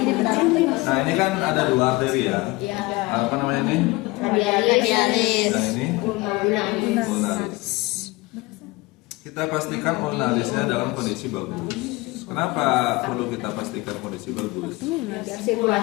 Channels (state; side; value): quieter; right; 22.5 dB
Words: ini benar. Nah ini kan ada dua arteri ya. Apa namanya ini? Radialis. Nah ini ulnaris. Kita pastikan ulnarisnya dalam kondisi bagus. Kenapa perlu kita pastikan kondisi bagus? Biar